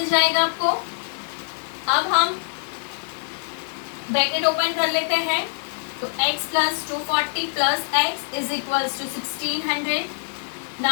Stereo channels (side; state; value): right; silent; digital silence